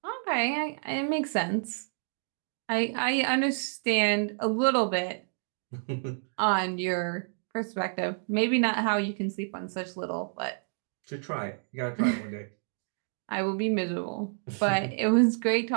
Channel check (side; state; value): left; silent; 58 dB below the other